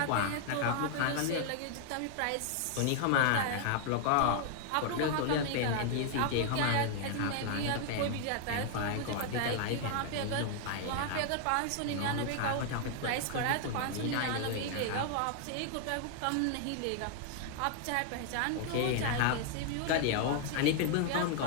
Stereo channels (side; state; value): both; different; correlation 0.00